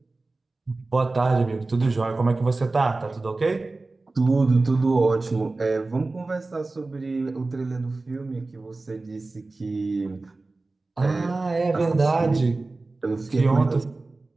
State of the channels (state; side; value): quieter; left; 3.3 dB